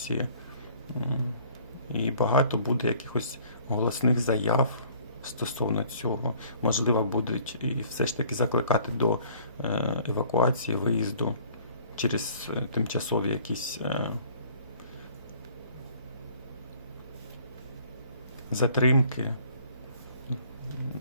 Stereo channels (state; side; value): inverted; both; correlation -0.54